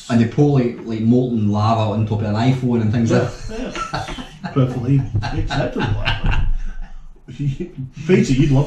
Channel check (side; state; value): both; identical; correlation 1.00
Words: And they pour like molten lava on top of an iPhone and things like that. Yeah, perfectly acceptable. Peter, you'd